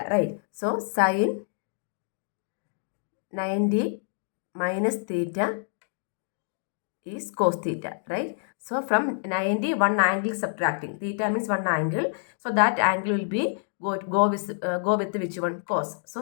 right? So sin 90 minus theta is cos theta, right? So from 90, one angle subtracting. Theta means one angle. So that angle will be go with which one? Cos. So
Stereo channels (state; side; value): silent; right; digital silence